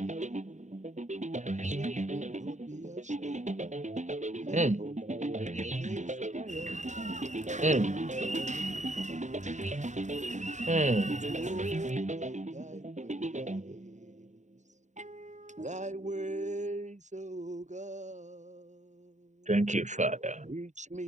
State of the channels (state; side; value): late; left; 0.34 ms